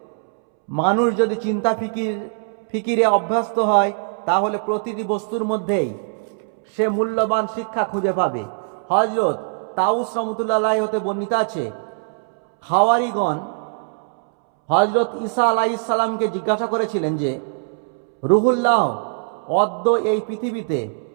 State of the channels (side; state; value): left; silent; 65 dB below the other